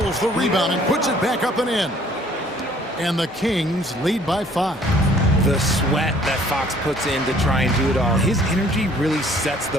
the rebound and puts it back up and in. And the Kings lead by 5. The sweat that Fox puts in to try and do it all. His energy really sets the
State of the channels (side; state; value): both; normal; correlation 0.58